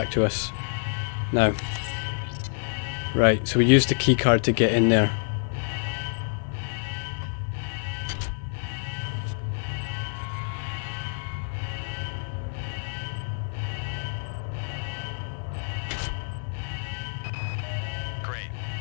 to us now. Right, so we used the key card to get in there. Great.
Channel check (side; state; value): right; silent; digital silence